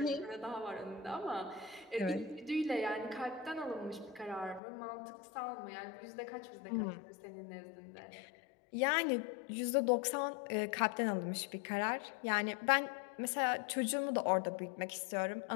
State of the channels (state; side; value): drops out; right; at 4.6 s